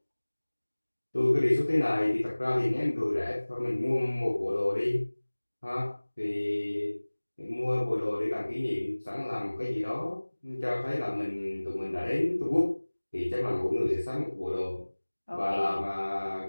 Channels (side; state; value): both; inverted; correlation -1.00